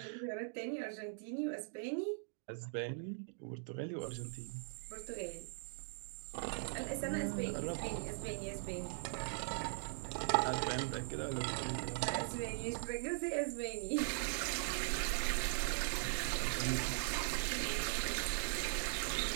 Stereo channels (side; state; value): left; silent; digital silence